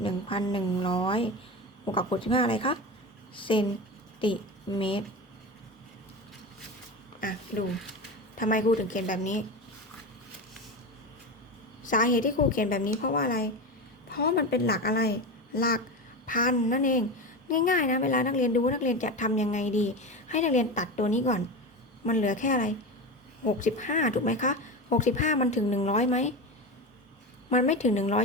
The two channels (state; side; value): normal; both; correlation 0.23